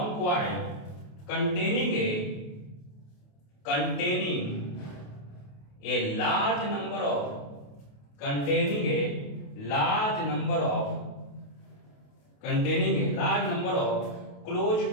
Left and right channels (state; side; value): late; right; 28 ms